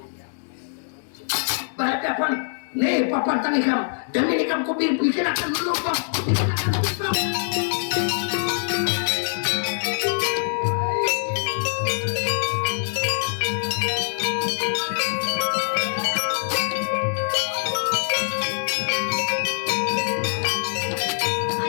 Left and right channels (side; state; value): right; silent; digital silence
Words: berhadapan nih papantang ikam dan ini ikam bikin akan lubang bikin akan lubang